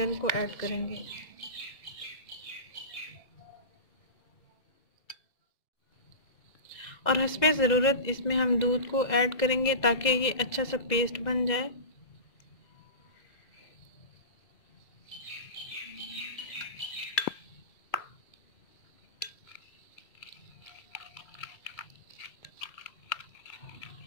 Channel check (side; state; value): right; late; 1.9 ms